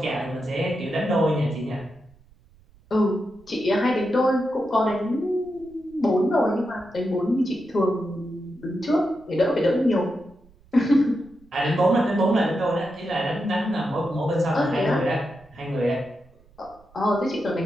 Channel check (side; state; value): right; noise; rumble, 28 dB below the sound